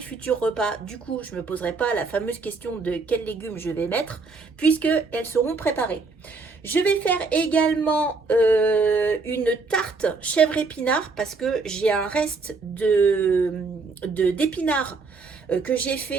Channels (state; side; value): quieter; left; 4.1 dB